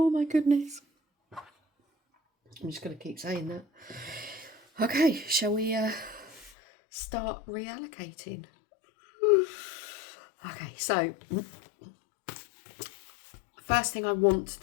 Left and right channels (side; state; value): right; drops out; at 6.5 s